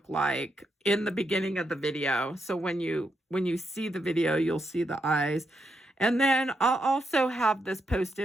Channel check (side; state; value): both; normal; correlation 0.82